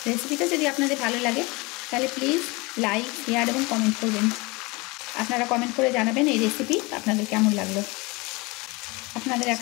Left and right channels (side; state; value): right; quieter; 25.1 dB